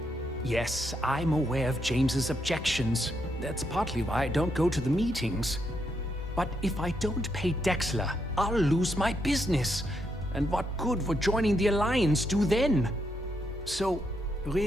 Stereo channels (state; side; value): normal; both; correlation 0.79